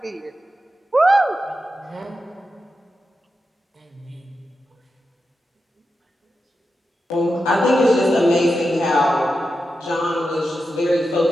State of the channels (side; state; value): both; normal; correlation 0.89